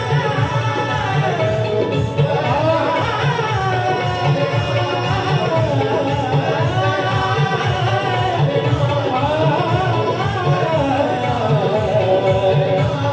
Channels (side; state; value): both; identical; correlation 1.00